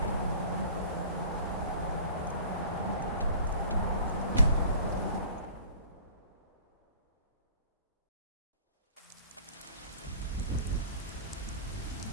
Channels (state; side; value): inverted; both; correlation -0.47